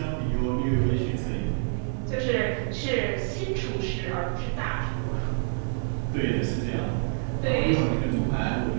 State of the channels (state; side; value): silent; left; 58 dB below the other